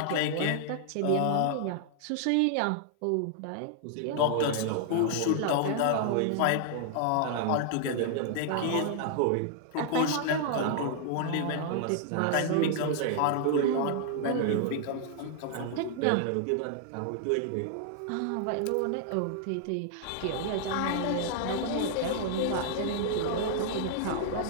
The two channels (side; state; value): both; different; correlation 0.00